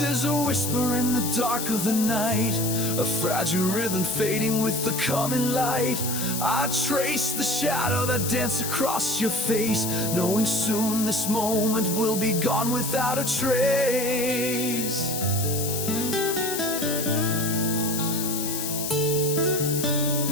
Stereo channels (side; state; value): left; noise; hiss, 3 dB below the sound